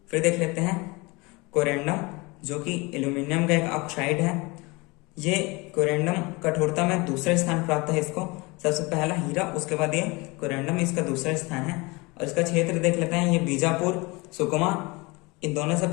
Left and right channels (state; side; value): quieter; right; 25.3 dB